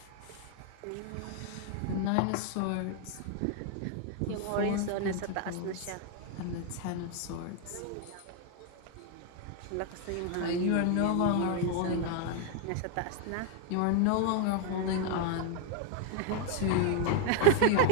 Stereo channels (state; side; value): different; both; correlation 0.01